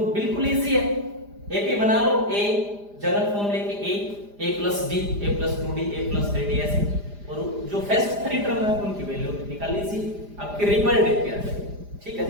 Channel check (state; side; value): late; left; 4.9 ms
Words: बिल्कुल इजी है। एपी बना लो, a जनरल फॉर्म लेके a plus d, a plus 2d, a plus 3d ऐसे, और जो फर्स्ट 3 टर्म है उनकी वैल्यू निकाल लीजिए, आपके रिजल्ट देख के आ जाएगा। ठीक है